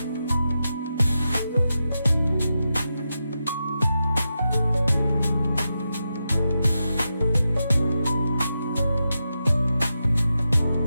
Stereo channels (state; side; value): inverted; both; correlation -0.88